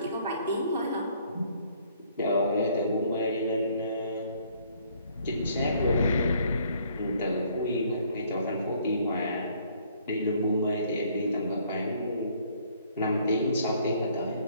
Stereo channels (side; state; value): both; inverted; correlation -0.62